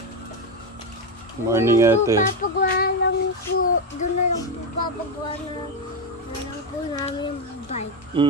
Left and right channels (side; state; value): both; normal; correlation 0.10